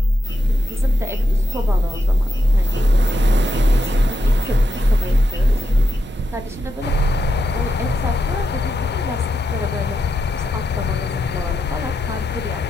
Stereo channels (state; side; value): normal; both; correlation 0.85